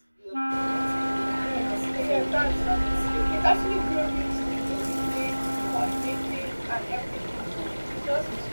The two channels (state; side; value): inverted; both; correlation -1.00